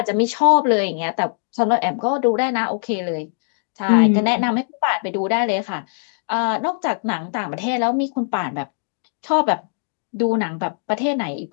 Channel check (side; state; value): right; silent; digital silence